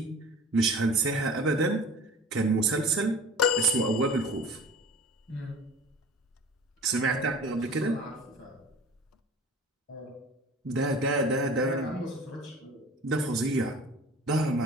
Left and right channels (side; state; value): both; normal; correlation 0.43